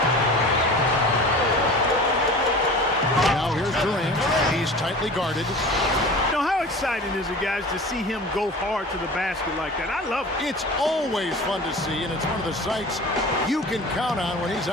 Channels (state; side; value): normal; both; correlation 0.38